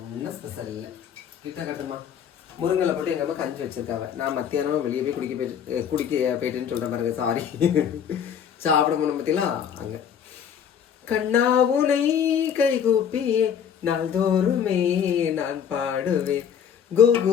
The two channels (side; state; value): right; quieter; 8.1 dB